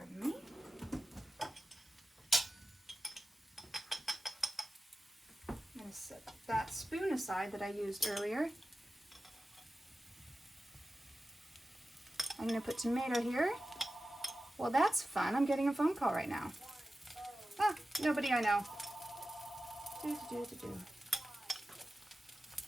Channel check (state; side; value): normal; both; correlation 0.94